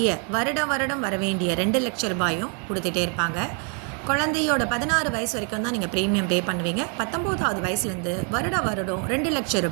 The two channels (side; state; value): left; quieter; 39.6 dB